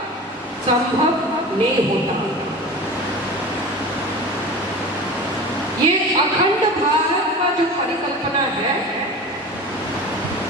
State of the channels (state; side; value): normal; both; correlation 0.34